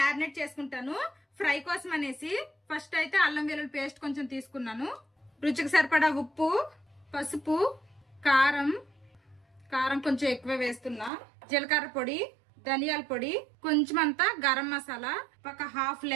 చేసుకుంటాను ఫ్రై కోసం అనేసి. ఫస్ట్ అయితే అల్లం వెల్లుల్లి పేస్ట్ కొంచెం తీసుకున్నాను. రుచికి సరిపడా ఉప్పు, పసుపు, కారం కొంచెం ఎక్కువ వేస్తున్నా, జీలకర్ర పొడి, ధనియాల పొడి, కొంచెం అంతా గరం మసాలా, ఒక హాఫ్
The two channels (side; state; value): left; drops out; at 11.1 s